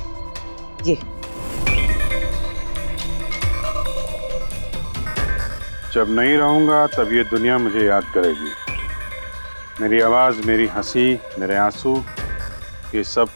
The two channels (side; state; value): both; inverted; correlation -1.00